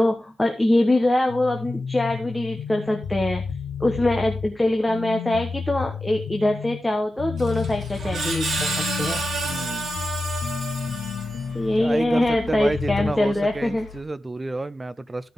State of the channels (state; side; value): normal; both; correlation 0.92